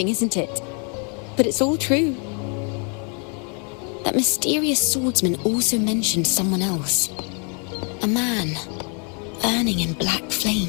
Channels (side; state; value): right; quieter; 38.0 dB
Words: isn't it? But it's all true. That mysterious swordsman also mentioned someone else. A man, burning in black